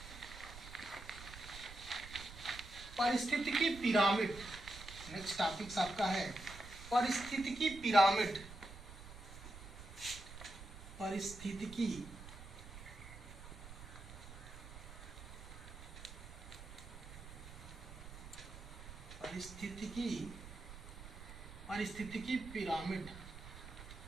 पारिस्थितिकी पिरामिड। नेक्स्ट टॉपिक्स आपका है पारिस्थितिकी पिरामिड। पारिस्थितिकी पारिस्थितिकी pyramid.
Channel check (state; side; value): noise; right; rumble, 13 dB below the sound